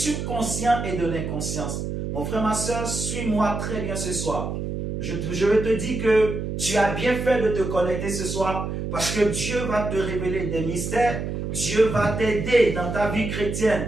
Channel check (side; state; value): right; noise; hum, 4 dB below the sound